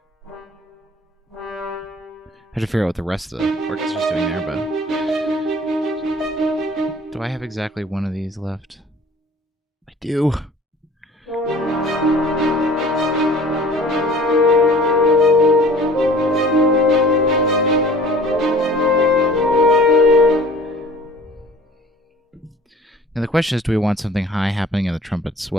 I have to figure out what the rest of the orchestra's doing there, but do I have exactly one of these left? I do. Now the question is, do we want something high happening in the trumpets?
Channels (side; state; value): both; normal; correlation 0.47